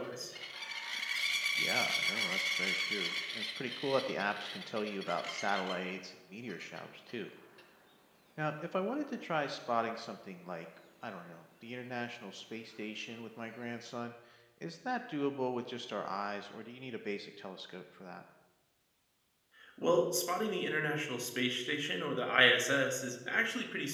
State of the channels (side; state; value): both; identical; correlation 1.00